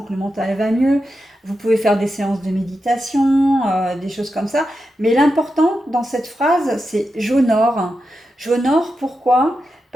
que le mental va mieux. Vous pouvez faire des séances de méditation, des choses comme ça. Mais l'important dans cette phrase, c'est j'honore. J'honore pourquoi?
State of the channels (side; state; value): both; normal; correlation 0.88